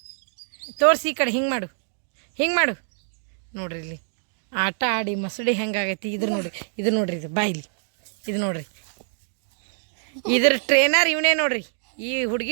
ತೋರ್ಸಿ ಈ ಕಡೆ ಹಿಂಗೆ ಮಾಡು ನೋಡ್ರಿ. ಇಲ್ಲಿ ಆಟ ಆಡಿ ಮಸಡಿ ಹೆಂಗಾಗೈತಿ ಇದು ನೋಡ್ರಿ ಇದು ಬಾಯಿಲಿ ಇದು ನೋಡ್ರಿ. ಇದ್ರ ಟ್ರೈನರ್ ಇವನೇ ನೋಡ್ರಿ, ಈ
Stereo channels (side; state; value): left; silent; 62 dB below the other